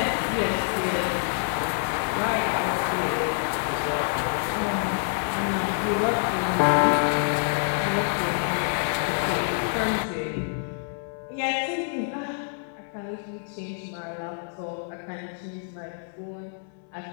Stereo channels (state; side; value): silent; right; 60 dB below the other